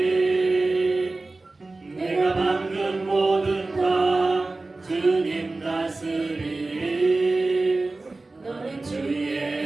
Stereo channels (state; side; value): quieter; left; 3.3 dB